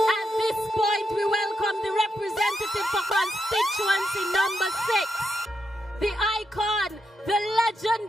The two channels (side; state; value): both; normal; correlation 0.83